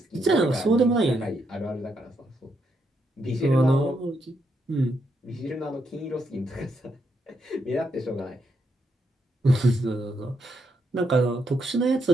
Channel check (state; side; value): normal; both; correlation 0.78